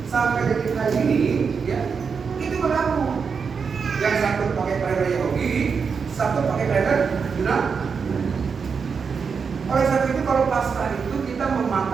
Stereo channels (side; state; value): left; quieter; 5.8 dB